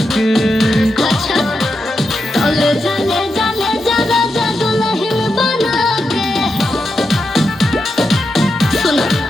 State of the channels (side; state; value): both; normal; correlation 0.86